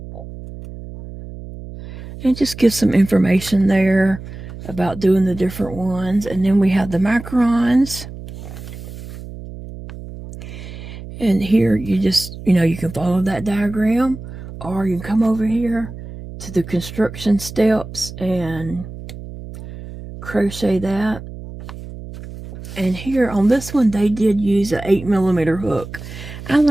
And just give some information there about doing the different ones. And then we have the macarons. And here you just, you can follow that diagram, or you can come over here to the construction steps and crochet that. And here on this one, they did use an 8mm hook. I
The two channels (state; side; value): noise; right; hum, 12 dB below the sound